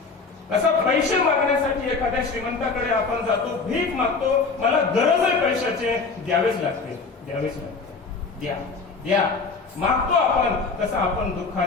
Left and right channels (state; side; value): quieter; right; 4.4 dB